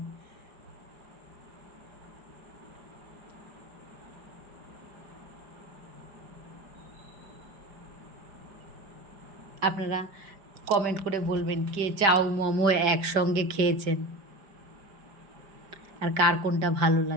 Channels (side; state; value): left; late; 5.0 ms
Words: আপনারা কমেন্ট করে বলবেন কে চাউ মোমো একসঙ্গে খেয়েছেন, আর কার কোনটা ভালো